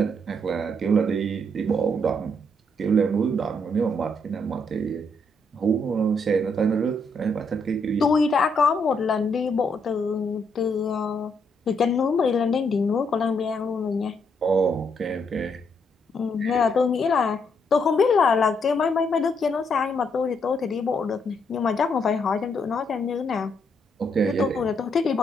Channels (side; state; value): both; normal; correlation 0.75